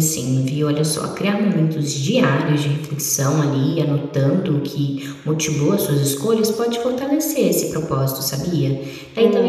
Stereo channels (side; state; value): both; identical; correlation 1.00